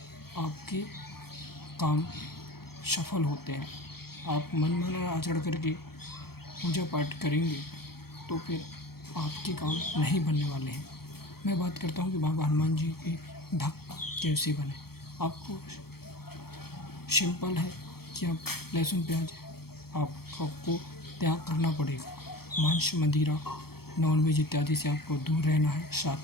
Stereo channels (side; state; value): right; late; 0.95 ms